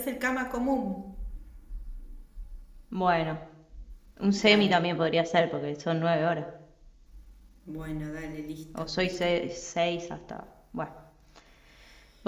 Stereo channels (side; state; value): both; identical; correlation 1.00